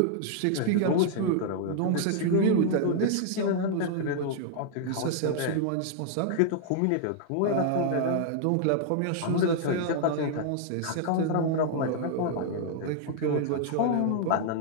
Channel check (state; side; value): different; both; correlation -0.01